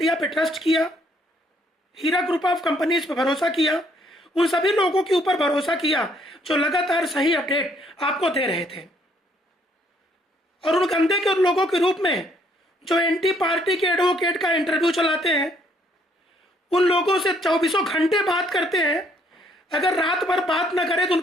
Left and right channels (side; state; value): both; normal; correlation 0.67